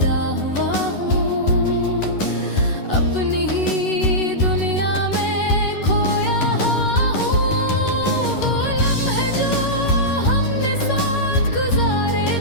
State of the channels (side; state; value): right; late; 11 ms